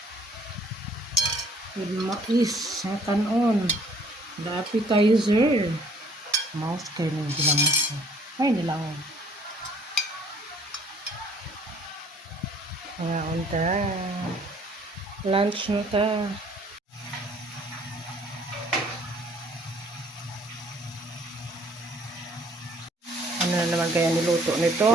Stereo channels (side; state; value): both; normal; correlation 0.59